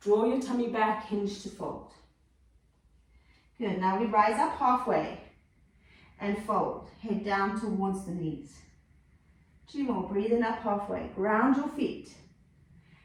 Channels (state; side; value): identical; both; correlation 1.00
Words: Draw your tummy back, hinge to fold. Good, now we rise up halfway and fold. Head down towards the knees. 2 more, breathing up halfway. Ground your feet.